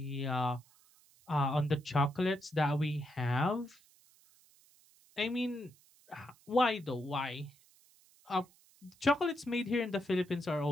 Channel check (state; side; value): noise; right; hiss, 29 dB below the sound